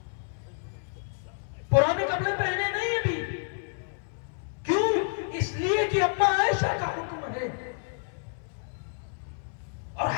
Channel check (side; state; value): right; silent; 58 dB below the other